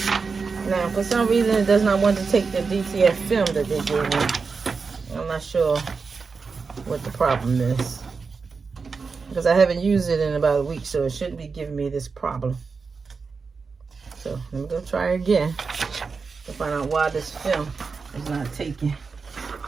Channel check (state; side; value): quieter; left; 4.9 dB